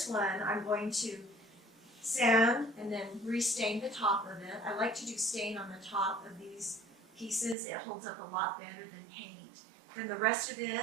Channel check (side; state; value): left; drops out; at 7.6 s